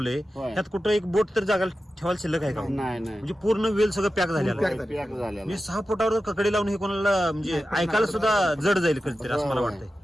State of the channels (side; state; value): both; normal; correlation 0.93